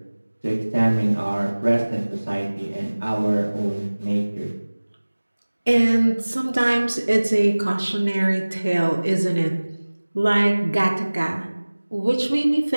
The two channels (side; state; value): both; inverted; correlation -1.00